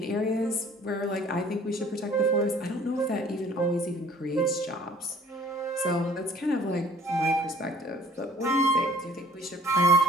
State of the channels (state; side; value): normal; both; correlation 0.53